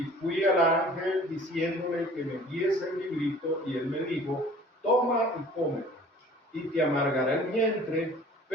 fui al ángel diciéndole que me diese el librito, y él me dijo, toma y cómelo, y te amargará el vientre,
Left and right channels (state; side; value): normal; both; correlation 0.48